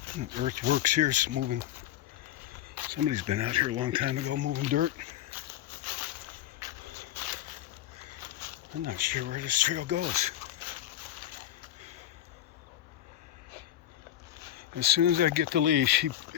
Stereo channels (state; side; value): quieter; right; 12.5 dB